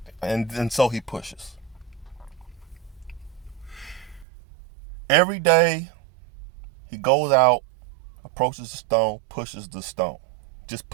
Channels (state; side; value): drops out; left; at 4.2 s